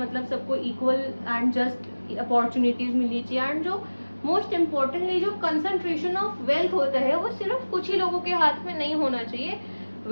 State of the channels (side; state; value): both; inverted; correlation -1.00